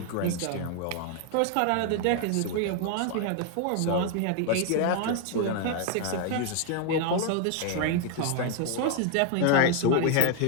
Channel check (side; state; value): both; different; correlation 0.01